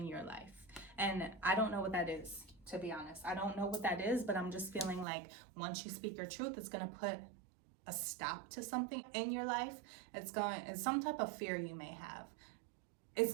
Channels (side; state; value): left; drops out; at 5.1 s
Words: your life. And I don't know what that is, to be honest. I don't know what that is, but I'm just feeling like once you speak your truth, it's going to put a stop to something in your life. It's some type of fear you may have.